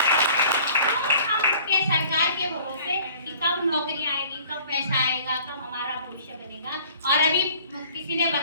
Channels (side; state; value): both; inverted; correlation -0.51